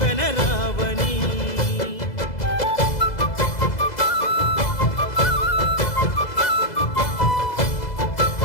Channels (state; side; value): late; right; 2.0 ms